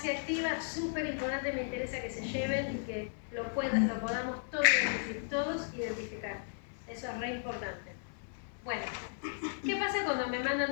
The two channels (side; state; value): right; silent; 54 dB below the other